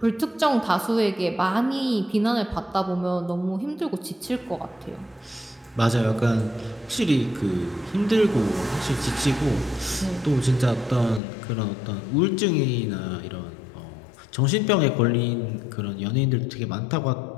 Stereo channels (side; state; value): right; drops out; at 11.2 s